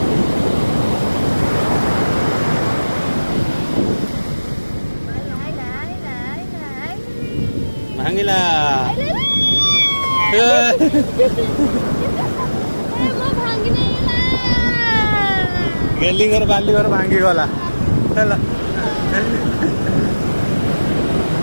भांगिला गेली घर बाली घर भांगी गला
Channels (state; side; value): inverted; both; correlation -1.00